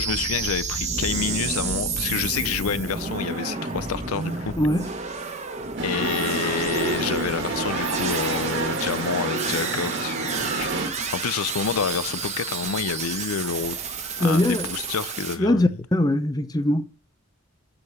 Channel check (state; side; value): normal; both; correlation 0.28